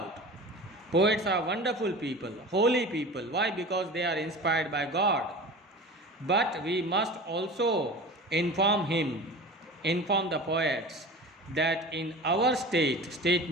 Poets are wonderful people, holy people. Why? Because they are inspired by God. But we must also inform the poets, that in our state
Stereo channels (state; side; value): normal; both; correlation 0.36